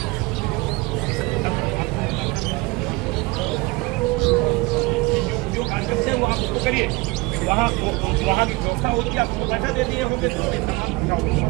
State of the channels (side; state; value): left; quieter; 24.0 dB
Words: करिए वहाँ की व्यवस्था होगी, आपको पैसा दे दिए होंगे तो